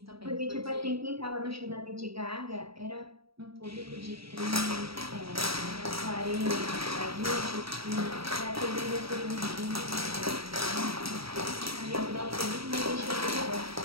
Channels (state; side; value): late; left; 0.76 ms